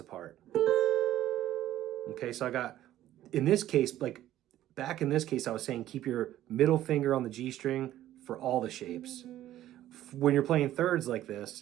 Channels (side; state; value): left; quieter; 13.4 dB